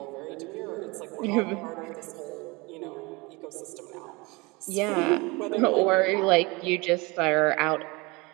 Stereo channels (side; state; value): left; quieter; 25.6 dB